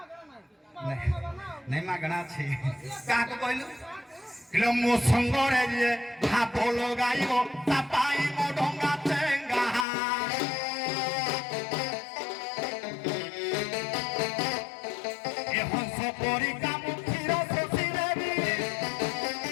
ନାଇଁ ମାଗଣା ଅଛି କାହାକୁ କହିଲୁ କିଲୋ ମୋ ସଙ୍ଗରେ ଯିଏ ଭାବ ଲଗାଇବ ତା ପାଇଁ ମୋ ଡଙ୍ଗା ଚେଙ୍ଗା ଏ ହଂସ ପରି କାମୁ କ୍ଷୀର ଶୋଷି ଦେବି ଏ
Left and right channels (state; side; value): drops out; right; at 9.9 s